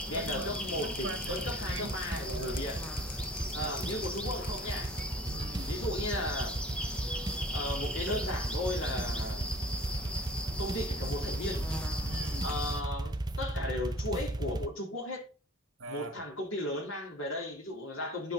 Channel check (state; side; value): normal; both; correlation 0.47